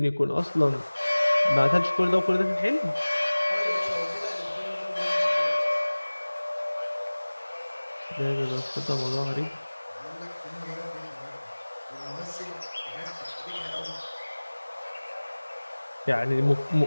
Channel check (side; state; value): both; inverted; correlation -1.00